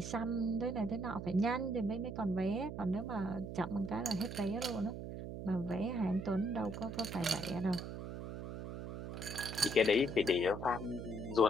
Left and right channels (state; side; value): noise; right; hum, 7 dB below the sound